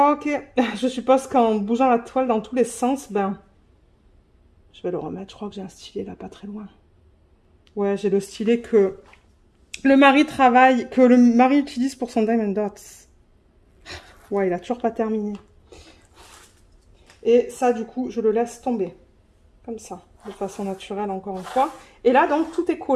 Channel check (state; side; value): identical; both; correlation 1.00